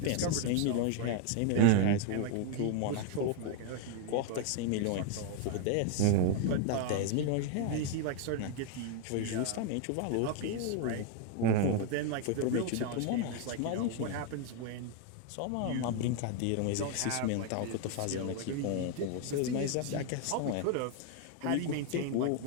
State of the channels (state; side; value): different; both; correlation 0.00